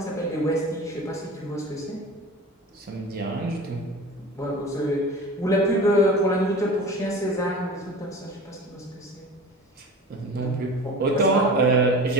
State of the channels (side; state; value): both; normal; correlation 0.36